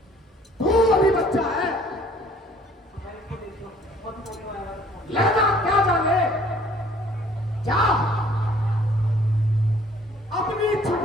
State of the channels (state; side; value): normal; both; correlation 0.57